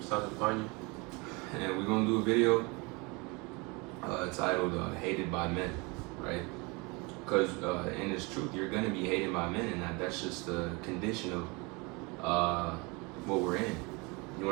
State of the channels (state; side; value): quieter; left; 27.8 dB